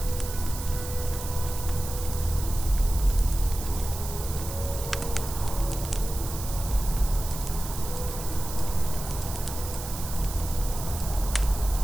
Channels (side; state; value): right; noise; hiss, 10 dB below the sound